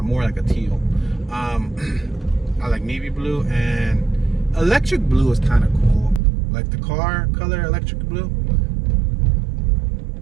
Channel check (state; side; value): drops out; left; at 6.2 s